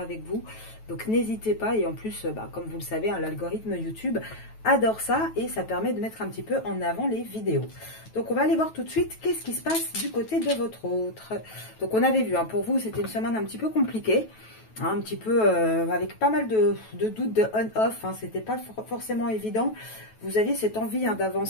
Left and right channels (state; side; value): late; right; 9.2 ms